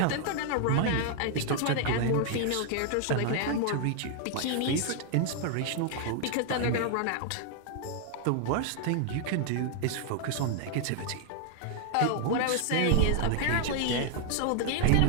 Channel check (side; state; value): both; different; correlation 0.00